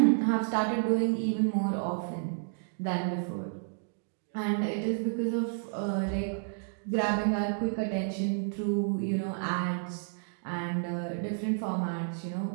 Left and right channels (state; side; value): silent; left; digital silence